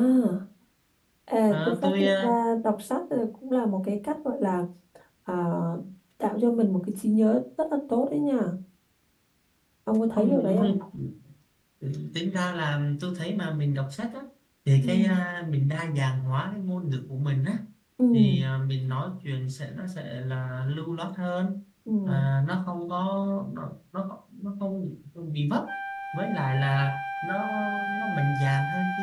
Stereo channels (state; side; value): identical; both; correlation 1.00